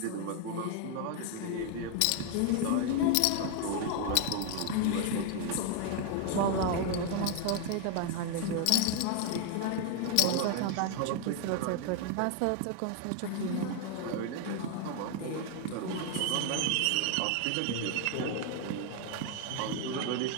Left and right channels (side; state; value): both; different; correlation 0.01